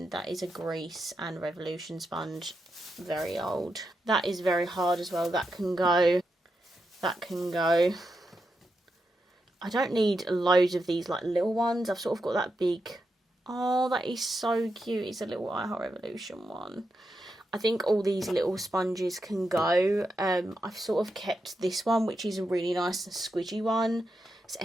That is a grease and Revolution sponge. Very old. That is very hard as well. That can go. That can go. I don't need loads of these, like, little ones. I've sort of got that big. Oh, that is so cute. It's a little I Heart Revolution one. I think all these little sponges can go. I've sort of kept this one, which is a really nice and squidgy one. So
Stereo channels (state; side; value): normal; both; correlation 0.86